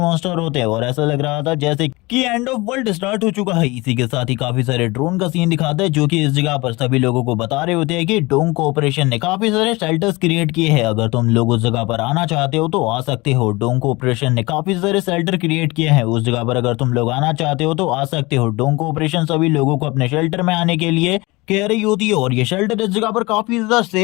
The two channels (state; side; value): quieter; right; 23.1 dB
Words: होते हैं और ऐसा लग रहा था जैसे कि एंड ऑफ वर्ल्ड स्टार्ट हो चुका है। इसी के साथ ही काफी सारे ड्रोन का सीन दिखाते हैं जो कि इस जगह पर सभी लोगों को बता रहे होते हैं कि डोंग कोऑपरेशन ने काफी सारे शेल्टर्स क्रिएट किए हैं, अगर तुम लोग उस जगह पर आना चाहते हो तो आ सकते हो। डोंग कोऑपरेशन ने काफी सारे शेल्टर क्रिएट किए हैं उस जगह पर, अगर तुम लोग आना चाहते हो तो आ सकते हो। डोंग कोऑपरेशन सभी लोगों को अपने शेल्टर में आने के लिए कह रही होती है और ये शेल्टर इस जगह पर काफी ज्यादा